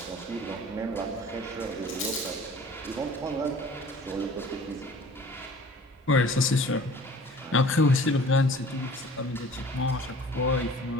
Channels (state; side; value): normal; both; correlation 0.47